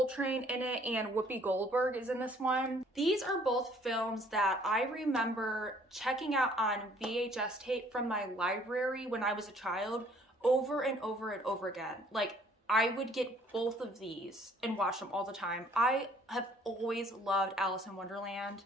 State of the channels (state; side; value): normal; both; correlation 0.59